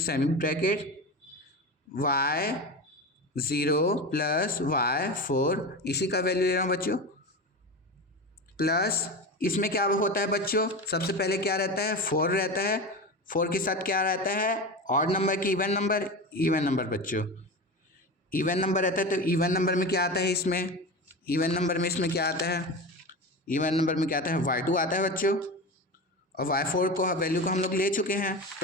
bracket y0 plus y4, इसी का वैल्यू ले रहा हूँ बच्चों, प्लस इसमें क्या होता है बच्चों, सबसे पहले क्या रहता है, 4 रहता है। 4 के साथ क्या रहता है, ऑड नंबर की इवन नंबर, इवन नंबर बच्चों, इवन नंबर रहता है। तो इवन नंबर में क्या आता है, इसमें इवन नंबर में इसमें क्या आता है, इवन नंबर में क्या आता है, y2 आता है बच्चों, और y4 को वैल्यू को हम लोग ले चुके हैं,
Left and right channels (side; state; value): both; normal; correlation 0.26